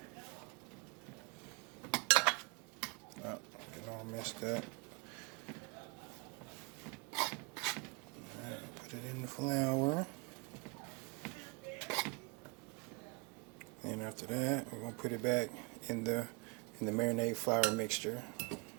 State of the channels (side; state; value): left; quieter; 30.4 dB